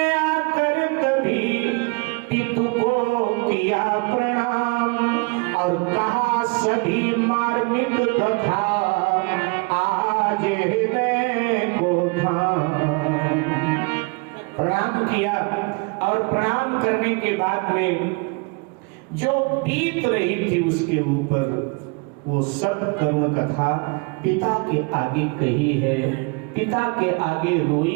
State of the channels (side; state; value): left; quieter; 30.7 dB